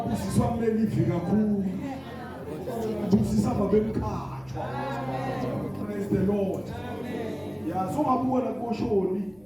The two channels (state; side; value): noise; left; rumble, 28 dB below the sound